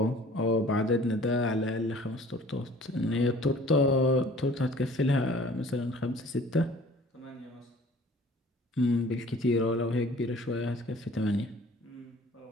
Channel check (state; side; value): normal; both; correlation 0.50